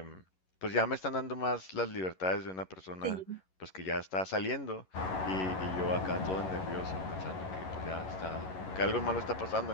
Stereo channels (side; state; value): right; late; 11 ms